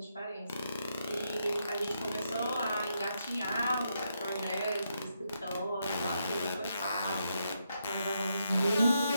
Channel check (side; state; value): both; inverted; correlation -0.80